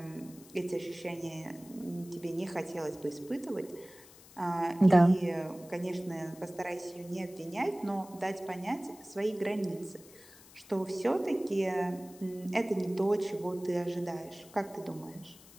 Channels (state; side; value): noise; left; hiss, 22 dB below the sound